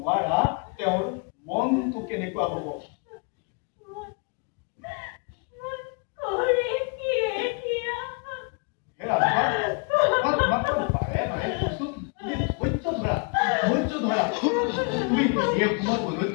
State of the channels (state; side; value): quieter; right; 35.9 dB